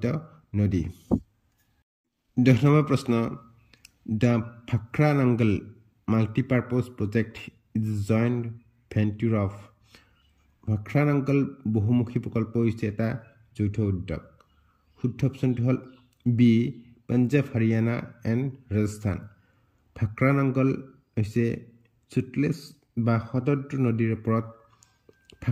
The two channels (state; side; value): identical; both; correlation 1.00